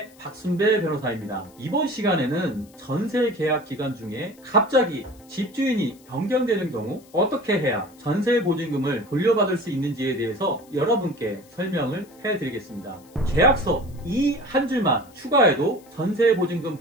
박순배 변호사입니다. 이번 시간에는 전세 계약 기간 중에 갑자기 집주인이 변경되는 경우 어떻게 해야 전세 보증금을 돌려받을 수 있는지에 대해서 여러분께 설명을 해드리겠습니다. 계약서 이 한 줄만 추가해도 전세 보증금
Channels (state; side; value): noise; left; hiss, 27 dB below the sound